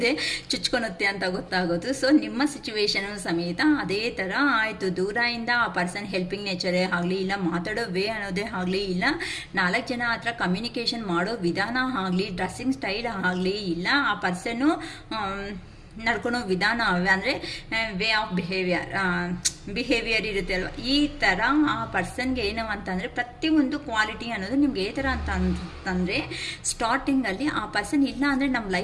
ಚುಚ್ಕೊಳುತ್ತೆ ಅಂತ ಗೊತ್ತಾಗೋದು. ಸೊ ನಿಮ್ಮ ಸಿಚುವೇಶನ್ ಸಮೇತ ಅದೇ ಥರ ಆಯಿತು. ದೂರದಿಂದ ಆ ಪರ್ಸನ್ ಹೆಲ್ಪಿಂಗ್ ನೇಚರೇ ಆಗಲಿ, ಇಲ್ಲ ಮಾತಾಡೋ ವೇ ಅನ್ನೋದೇ ಆಗಲಿ, ಇಲ್ಲ 4 ಜನ ಹತ್ರ ಕಮ್ಯುನಿಕೇಷನ್ ಮಾಡೋ ವಿಧಾನ ಆಗಲಿ, ಡ್ರೆಸ್ಸಿಂಗ್ ಸ್ಟೈಲ್ ಆಗಲಿ, ಇಲ್ಲ ಆ ಪರ್ಸನ್ನು ನಡ್ಕೊಳೋ ವಿಧಾನ ಅಂದರೆ ವೇ ಆಫ್ ಬಿಹೇವಿಯರ್ ಇರುತ್ತೆ ಅಲ್ವ, ಈ ಥರ ಆ ಪರ್ಸನ್ಗೆ ಏನು ಅಂತಂದರೆ ಪ್ರತಿಯೊಂದು ಕ್ವಾಲಿಟಿ ಅನ್ನೋದು ನಿಮ್ಗೆ ಈ ಥರ ಅಂತಂದರೆ ಸ್ಟಾರ್ಟಿಂಗಲ್ಲಿ ಆ ಪರ್ಸನ್ ಇಲ್ಲ ಅಂದರೆ ನಮ್ಮ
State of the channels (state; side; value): identical; both; correlation 1.00